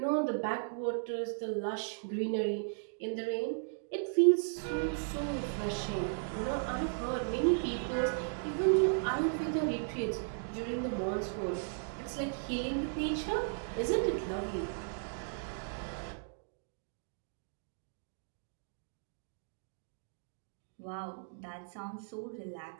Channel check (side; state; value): left; silent; digital silence